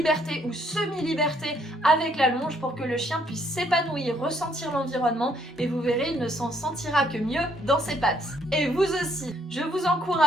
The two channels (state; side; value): normal; both; correlation 0.68